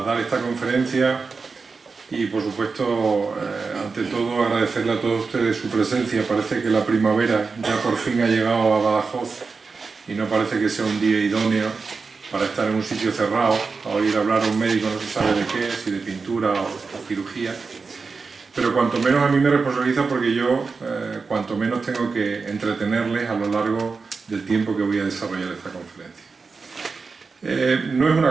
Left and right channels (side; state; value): left; quieter; 4.6 dB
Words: dar esta conferencia y, por supuesto, ante todo, agradecerle a todos ustedes su presencia. Parece que la primavera ya por fin ha llegado a Badajoz y no parece que sea un día idóneo para estar en un sitio cerrado, a oír hablar a un médico no se sabe de qué, si de pintura o cirugía. Pero cuanto menos a mí me responsabiliza porque yo, cuanto menos tengo que entretenerles a lo largo del tiempo que voy a desarrollar esta conferencia. No es